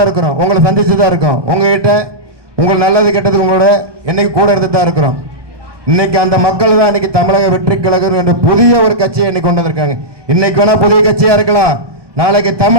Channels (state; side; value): late; left; 1.2 ms